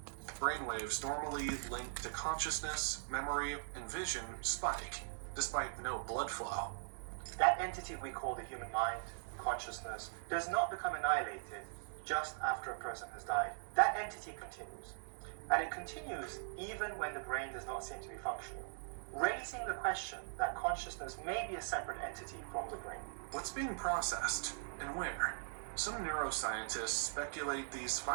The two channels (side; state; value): left; silent; digital silence